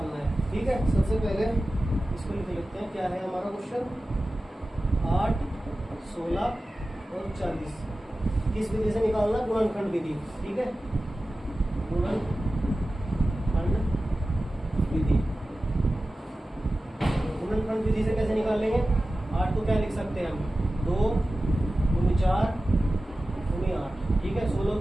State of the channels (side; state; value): both; normal; correlation 0.95